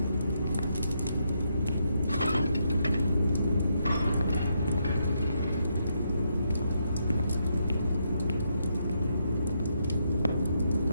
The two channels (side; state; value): both; inverted; correlation -0.78